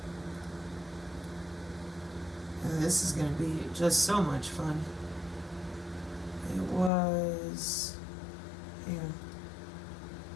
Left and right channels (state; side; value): drops out; right; at 6.9 s